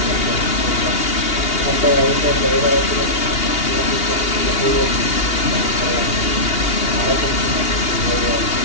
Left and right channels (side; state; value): right; late; 2.8 ms